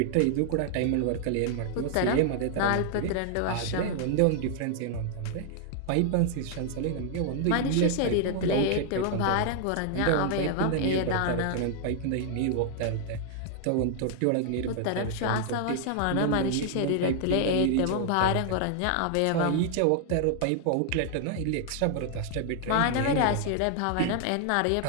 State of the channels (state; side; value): different; both; correlation 0.00